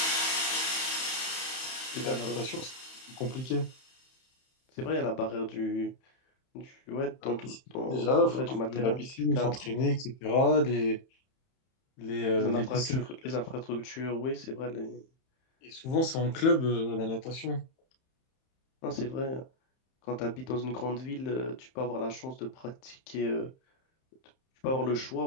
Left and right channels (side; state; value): right; late; 31 ms